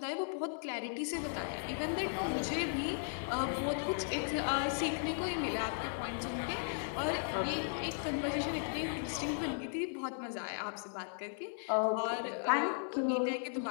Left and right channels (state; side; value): silent; right; digital silence